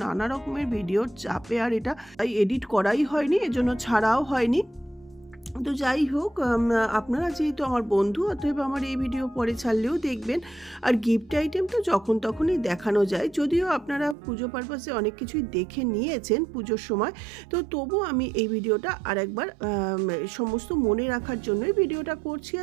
নানা রকমের ভিডিওর চাপে আর এটা এডিট করাই হয়নি, এজন্য ছাড়াও হয়নি। তো যাই হোক, আপনারা যেহেতু আমার বন্ধু, অতএব আমার এই ভিডিও পরে ছাড়লেও দেখবেন। আর গিফট আইটেম তো যখন তখনই দেখানো যায়, যদিও আপনারা পুজো পারপাসে অনেক কিছুই দেখে নিয়েছেন পুজোর সময়, তো তবু আমি এই ভিডিওটা আরেকবার সমস্ত মনে রাখার জন্যই ভিডিওটা করছি,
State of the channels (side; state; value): left; drops out; at 14.2 s